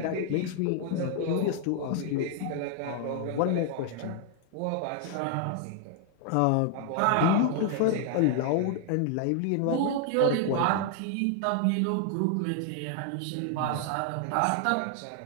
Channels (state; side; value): different; both; correlation 0.00